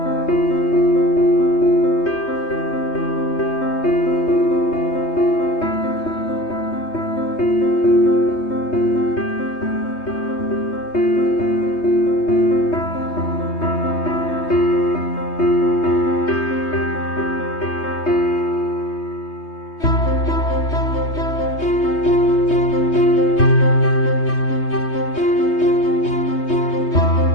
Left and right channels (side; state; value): right; late; 3.2 ms